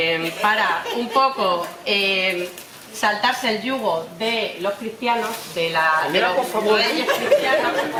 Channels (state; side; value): identical; both; correlation 1.00